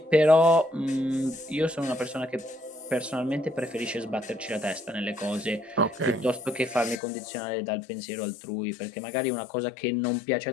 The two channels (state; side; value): drops out; right; at 7.0 s